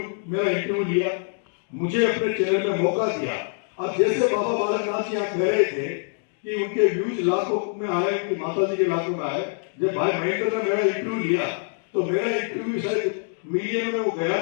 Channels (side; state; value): right; silent; 62 dB below the other